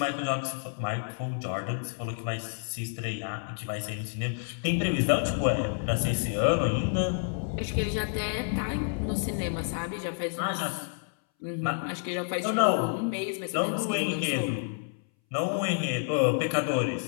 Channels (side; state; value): right; silent; 58 dB below the other